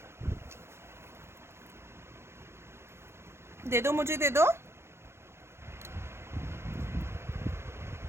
दे दो, मुझे दे दो।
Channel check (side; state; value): left; late; 0.12 ms